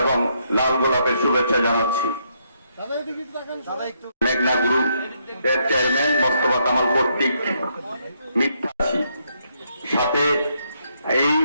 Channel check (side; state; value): both; inverted; correlation -0.75